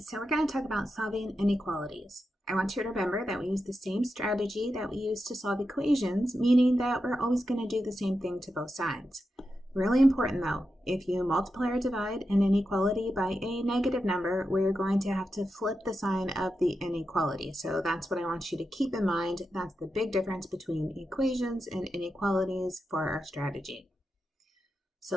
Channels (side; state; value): both; normal; correlation 0.88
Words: we're going to talk about solving inequalities. I want you to remember that we use the same strategy that we use to solve equations, meaning that we're always going to do the same thing to both sides. Really important though, if you multiply or divide an inequality by a negative number, we're going to have to flip the sign of the inequality. So that's what I want you to keep in mind. That's the big difference between equations and inequalities for our strategy. So